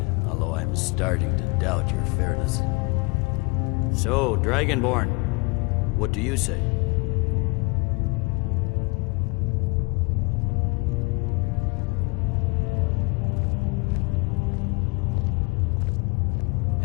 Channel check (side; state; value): right; quieter; 28.7 dB